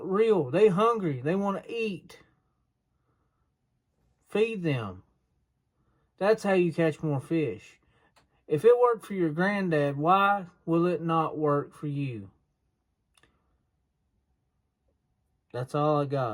real. They hungry. They want to eat. Feed them. That's how you catch more fish. If it worked for your granddad, why will it not work for you? That's all I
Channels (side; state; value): both; identical; correlation 1.00